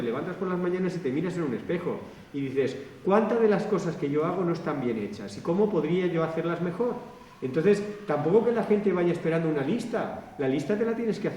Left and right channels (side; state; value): both; identical; correlation 1.00